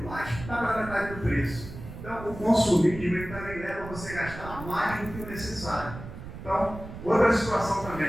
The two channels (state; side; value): noise; right; rumble, 12 dB below the sound